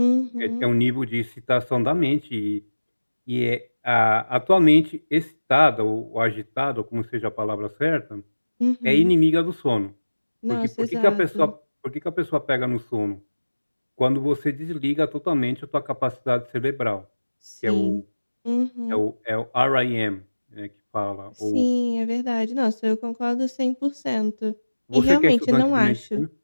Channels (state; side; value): inverted; both; correlation -1.00